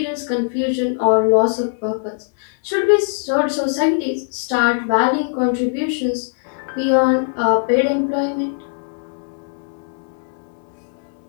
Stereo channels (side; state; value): right; silent; digital silence